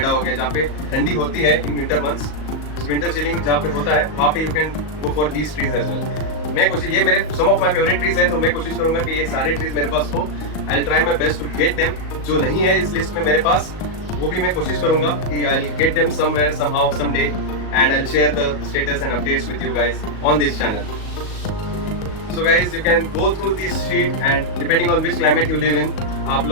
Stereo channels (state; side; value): late; right; 37 ms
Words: हो गया, जहाँ पे ठंडी होती है in winter months, winter chilling जहाँ पे होता है वहाँ पे you can go for these trees as well. मैं कोशिश, ये मेरे some of my favourite trees है, तो मैं कोशिश करूंगा कि ये सारे ट्रीज मेरे पास हो। I will try my best to get them. जो नहीं है इस लिस्ट में मेरे पास, वो भी मैं कोशिश करूंगा कि I will get them somewhere somehow someday, and I will share the status and updates with you guys on this channel. So guys, you can go through this sheet, and depending on which climate you live in, आप